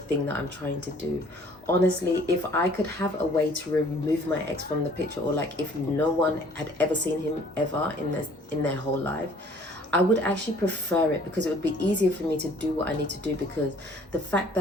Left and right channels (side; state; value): both; normal; correlation 0.56